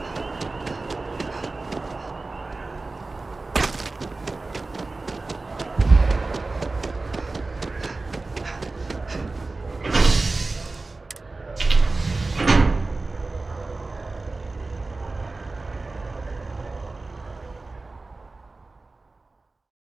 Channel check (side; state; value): left; quieter; 3.4 dB